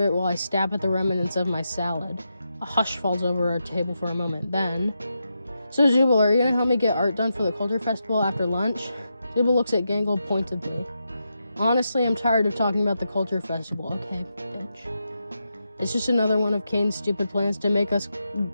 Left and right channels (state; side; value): inverted; both; correlation -0.86